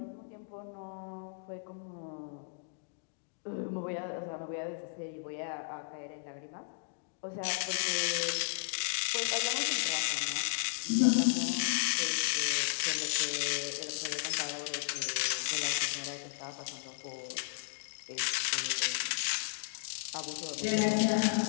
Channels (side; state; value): right; silent; digital silence